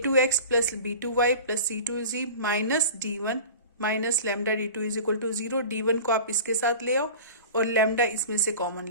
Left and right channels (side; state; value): both; inverted; correlation -0.38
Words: plus b2y plus c2z minus d1 minus lambda D two is equal to 0. d1 को आप इसके साथ ले आओ और लैम्डा इसमें से common